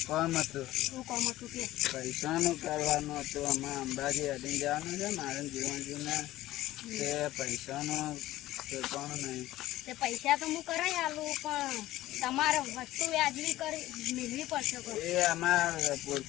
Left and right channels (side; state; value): right; quieter; 15.7 dB